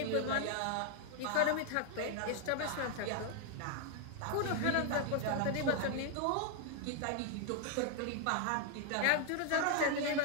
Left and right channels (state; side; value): different; both; correlation 0.00